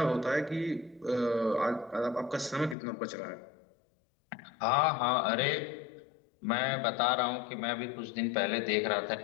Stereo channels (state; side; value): drops out; right; at 2.8 s